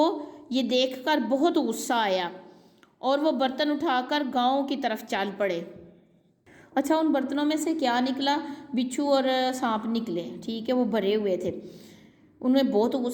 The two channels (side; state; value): both; identical; correlation 1.00